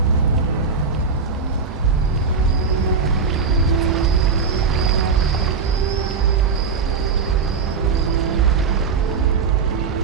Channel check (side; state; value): left; quieter; 5.3 dB